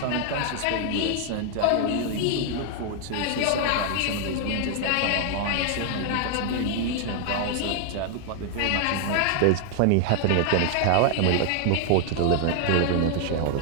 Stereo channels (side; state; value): both; different; correlation 0.00